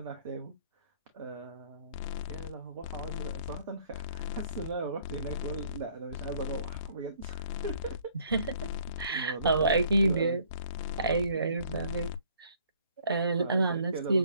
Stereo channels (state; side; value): inverted; both; correlation -0.60